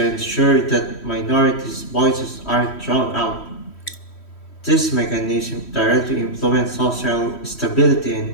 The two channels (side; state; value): right; late; 3.1 ms